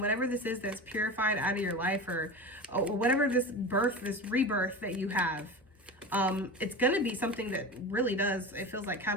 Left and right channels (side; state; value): both; normal; correlation 0.28